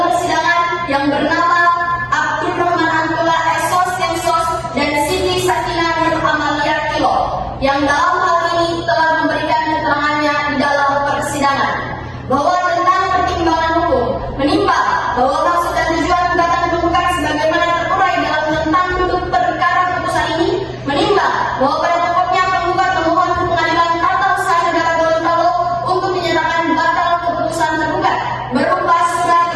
persidangan yang bernama Abdul Rahman Antula Esos Temsos dan Siti Sakina Nur Amalia Kilo yang dalam hal ini telah memberikan keterangannya di dalam persidangan bahwa tentang pertimbangan hukum menimbang bahwa maksud dan tujuan gugatan penggugat sebagaimana terurai dalam tentang duduk perkara putusan ini menimbang bahwa pada pokoknya penggugat memohon ke Pengadilan Tata Usaha Negara Gorontalo untuk dinyatakan batal keputusan tergugat berupa surat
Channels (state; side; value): identical; both; correlation 1.00